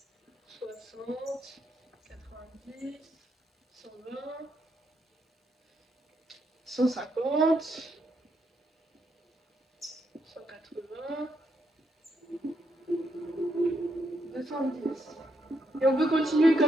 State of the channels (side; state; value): both; normal; correlation 0.78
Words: 60, 90, 120, 150, 180, 210. Et on peut continuer